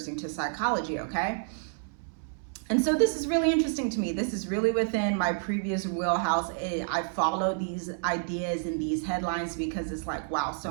to psychology, okay? And so this is really interesting to me. This is really within my previous wheelhouse. I follow these ideas and these headlines because it's like, wow,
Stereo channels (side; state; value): left; silent; 58 dB below the other